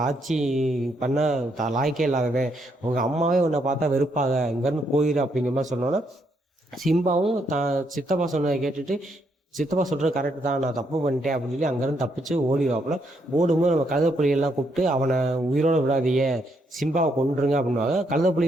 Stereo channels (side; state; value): both; normal; correlation 0.75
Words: ஆட்சி பண்ண லாய்க்கே இல்லாதவன், உங்கள் அம்மாவே உன்னை பார்த்தா வெறுப்பாக, இங்கேருந்து போயிரு அப்படிங்கிற மாதிரி சொன்னோன்னா சிம்பாவும் சித்தப்பா சொன்னதை கேட்டுட்டு, சித்தப்பா சொல்கிறது கரெக்டு தான், நான் தப்பு பண்ணிட்டேன் அப்படின்னு சொல்லி அங்கேருந்து தப்பிச்சு ஓடிவாப்புல. ஓடும்போது நம்ம கழுதைப்புலிகள்லாம் கூப்பிட்டு, அவனை உயிரோடு விடாதீங்க, சிம்பாவை கொண்டுருங்க அப்படின்வாங்க.